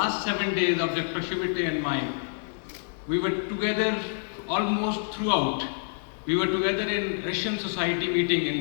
7 days of Dr. Chivate and mine, we were together almost throughout. We were together in Russian Society meeting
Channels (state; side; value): silent; right; digital silence